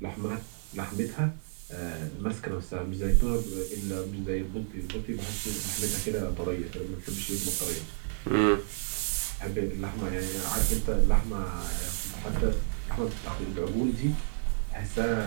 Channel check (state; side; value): silent; left; 56 dB below the other